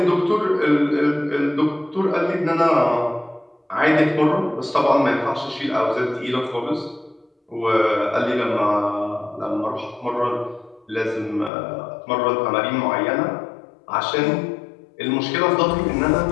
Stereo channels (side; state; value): right; drops out; at 11.5 s